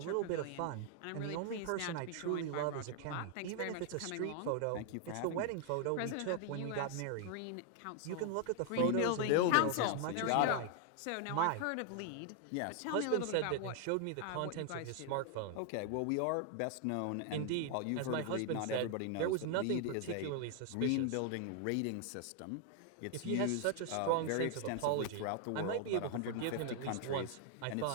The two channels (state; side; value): different; both; correlation 0.00